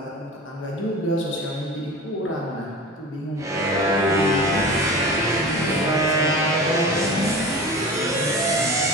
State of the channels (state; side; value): normal; both; correlation 0.34